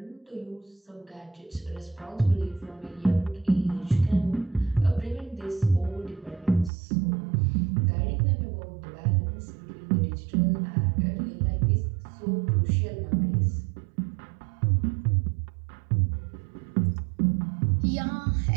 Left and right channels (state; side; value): drops out; left; at 6.7 s